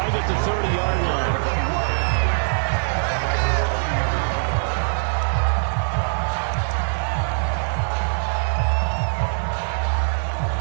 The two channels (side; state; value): left; silent; 57 dB below the other